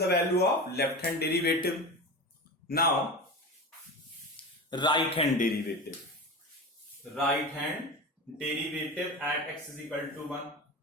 value of left hand derivative. Now right hand derivative. Right hand derivative at x is equal to 1.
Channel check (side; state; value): both; normal; correlation 0.27